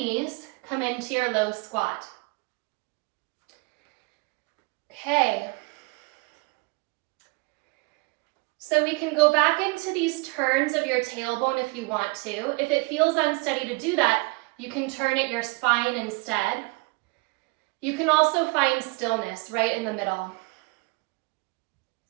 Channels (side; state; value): left; quieter; 27.8 dB